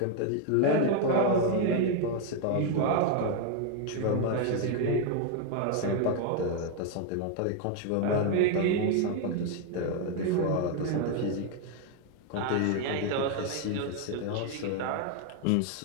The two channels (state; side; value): different; both; correlation 0.01